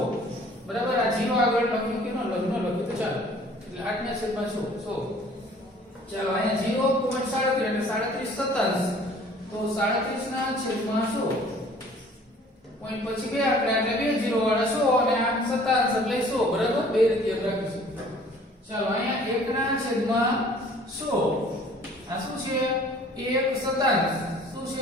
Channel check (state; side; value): normal; both; correlation 0.53